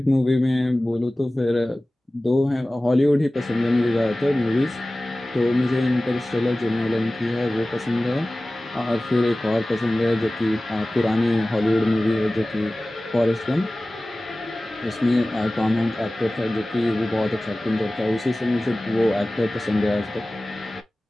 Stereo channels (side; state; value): both; normal; correlation 0.97